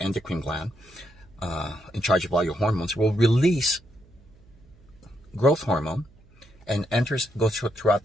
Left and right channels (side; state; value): right; noise; hum, 27 dB below the sound